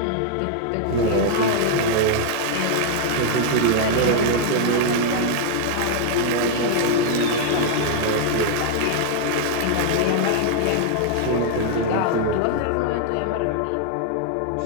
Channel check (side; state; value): both; different; correlation 0.00